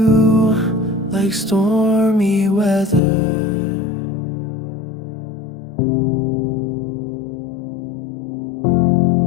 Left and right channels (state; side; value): drops out; right; at 3.0 s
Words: like stormy weather.